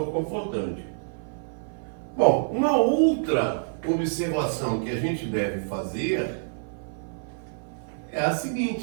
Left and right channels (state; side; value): silent; left; 55 dB below the other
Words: confortante. Bom, uma outra observação que a gente deve fazer é a